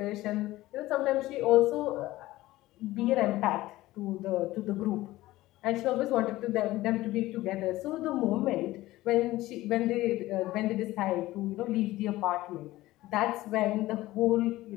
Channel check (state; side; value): quieter; right; 17.2 dB